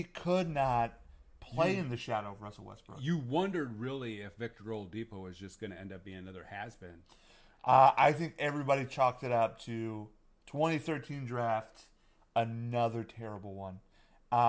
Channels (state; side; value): identical; both; correlation 1.00